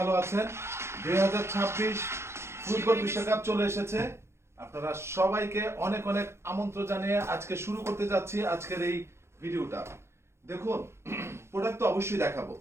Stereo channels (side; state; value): left; late; 0.13 ms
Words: আছেন। 2026 ফুটবল বিশ্বকাপ চলে এসেছে। আপনারা সবাইকে অনেক অনেক আমন্ত্রণ জানিয়ে আজকে শুরু করতে যাচ্ছি আজকের এই ভিডিওটা। দেখুন, প্রোডাক্ট তো অবশ্যই দেখাবো,